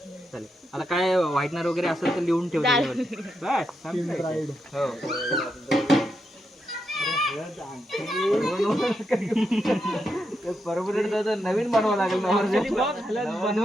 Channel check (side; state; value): both; normal; correlation 0.83